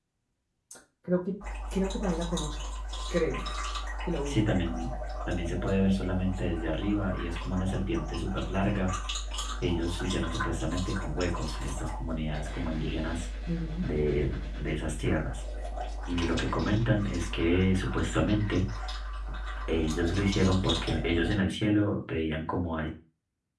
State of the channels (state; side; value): identical; both; correlation 1.00